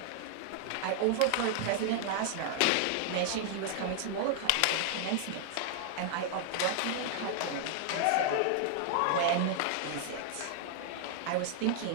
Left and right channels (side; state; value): both; different; correlation 0.00